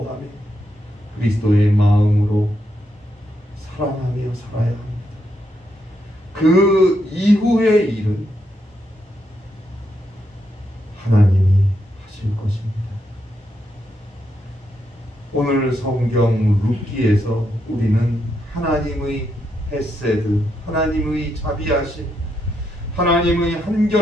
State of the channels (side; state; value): both; normal; correlation 0.81